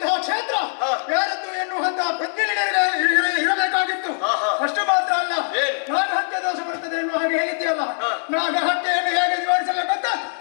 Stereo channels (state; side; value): silent; right; digital silence